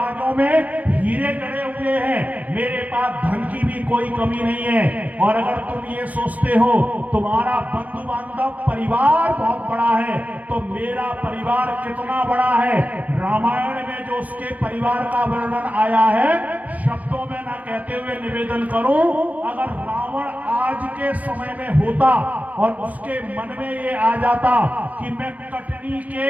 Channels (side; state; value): left; late; 0.075 ms